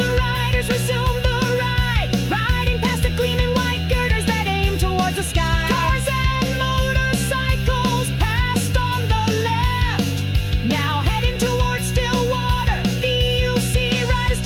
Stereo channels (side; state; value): both; identical; correlation 1.00